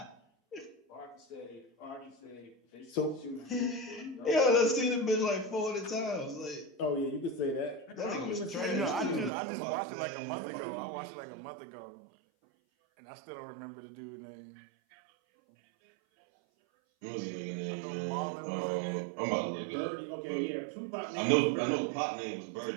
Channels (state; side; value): drops out; left; at 9.3 s